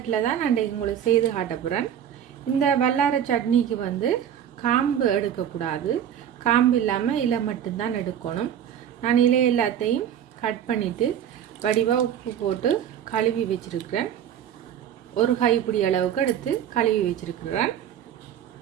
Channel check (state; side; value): quieter; left; 9.7 dB